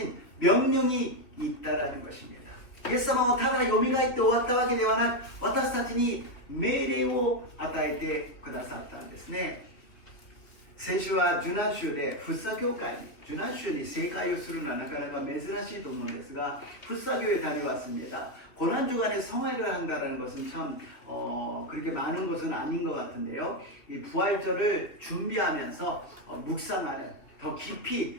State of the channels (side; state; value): right; late; 2.7 ms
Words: 명령이 있다라는 것입니다. イエス様はただ蘇って終わったわけではなく、私たちに命令を与えてくださったんですね。先週は受難週で福生教会に受難週に正解をするのはなかなか珍しいと思うんですが福生교회에 다녀왔습니다. 고난주간에 성화를 한다는 것은 참 그렇게 많은 것은 아닌 것 같은데요. 이 부활절을 준비하면서 묵상하는 더